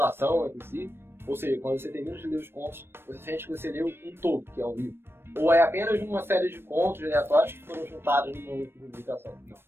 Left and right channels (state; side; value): late; left; 0.11 ms